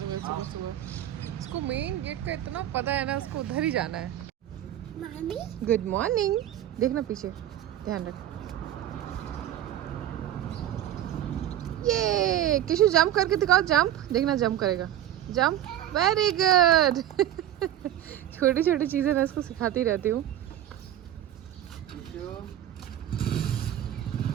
में सुबह सुबह। इसको मेन गेट का इतना पता है ना, उसको उधर ही जाना है। Good morning. देखना पीछे, ध्यान रख। ये किशु जंप करके दिखाओ, जंप देखना, जंप करेगा, जंप, वेरी गुड। छोटी छोटी चीजें मैं इसको सिखाती रहती हूँ।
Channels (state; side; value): quieter; left; 11.9 dB